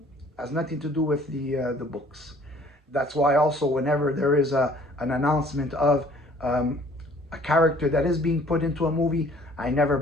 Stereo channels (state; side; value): normal; both; correlation 0.55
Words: has nothing to do with the books. That's why also whenever there is an announcement of a character that is being put into a movie, I never